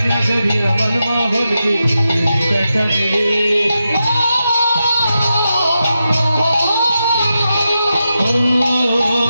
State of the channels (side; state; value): both; inverted; correlation -0.88